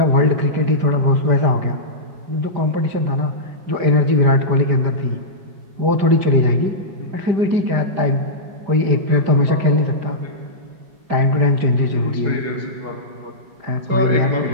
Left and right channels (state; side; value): late; left; 5.1 ms